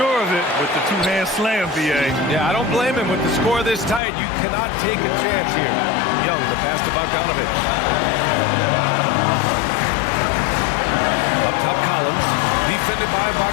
of it with the two-hand slam, B.A. Yeah, I don't blame him with the score this tight. You cannot take a chance here. Young, the pass to Bogdanovic. Up top, Collins. Defended by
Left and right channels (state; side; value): drops out; right; at 4.0 s